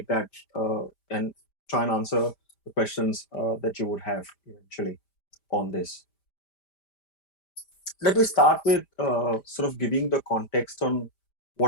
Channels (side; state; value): right; late; 5.0 ms